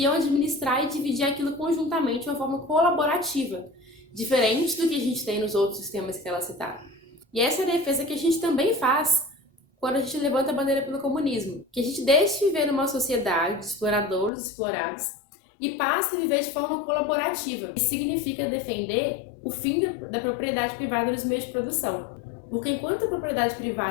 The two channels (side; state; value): right; drops out; at 14.3 s